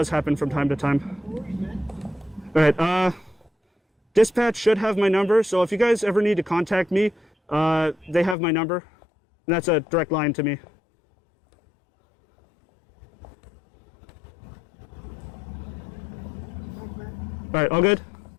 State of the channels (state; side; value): drops out; right; at 8.3 s